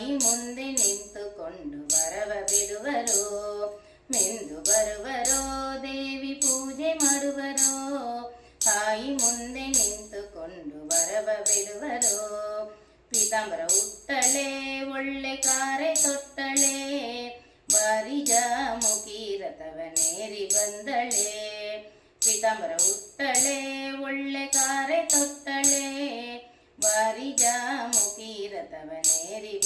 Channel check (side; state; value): both; identical; correlation 1.00